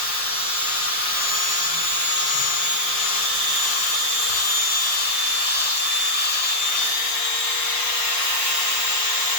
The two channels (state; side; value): late; right; 5.6 ms